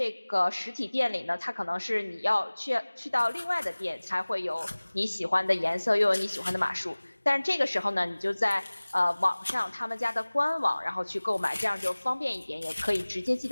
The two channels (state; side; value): inverted; both; correlation -1.00